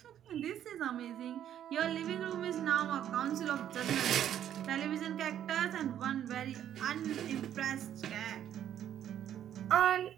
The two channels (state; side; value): quieter; left; 10.5 dB